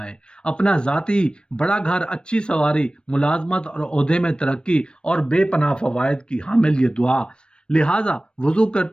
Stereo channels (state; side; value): late; right; 0.054 ms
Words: اپنا ذاتی بڑا گھر، اچھی سواری، ملازمت اور عہدے میں ترقی اور بے پناہ فوائد کی حامل یہ دعا۔ لہٰذا وضو